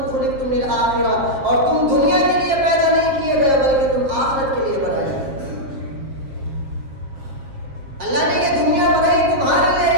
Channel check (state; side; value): late; left; 7.5 ms